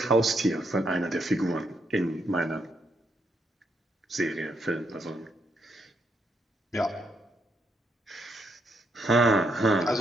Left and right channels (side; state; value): both; normal; correlation 0.76